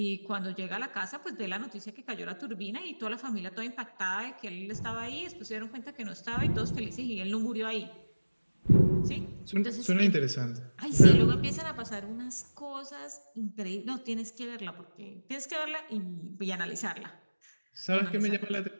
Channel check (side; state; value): both; inverted; correlation -1.00